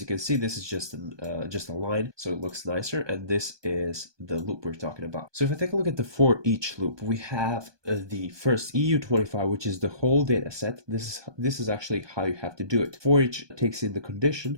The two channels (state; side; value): late; left; 1.2 ms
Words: can see, this is just a line, so it looks nicer, and this is the loop we're talking about. So if I take a look at the for each loop, we have the first EU25, which is the whole data set. This is actually how you have to do it. For each takes in the condition,